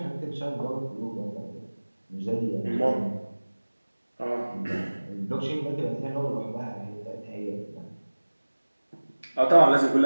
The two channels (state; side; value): inverted; both; correlation -1.00